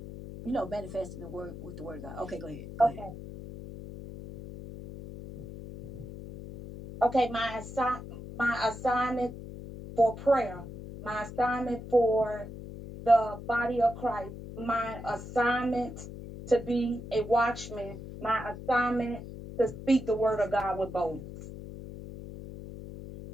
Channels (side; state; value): left; noise; hum, 11 dB below the sound